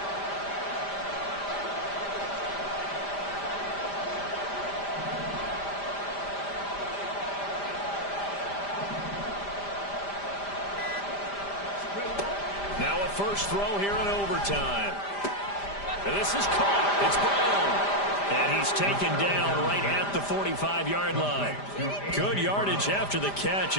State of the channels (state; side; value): late; right; 5.0 ms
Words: Now a first throw here in overtime. And this is caught. It's Brown. And he's taken down right at the 45-yard line. Good yardage after the catch.